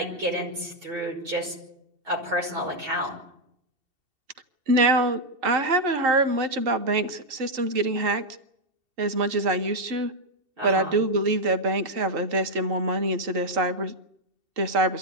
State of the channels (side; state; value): left; late; 2.7 ms